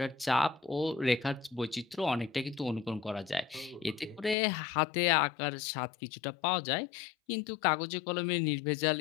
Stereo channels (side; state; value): right; drops out; at 4.4 s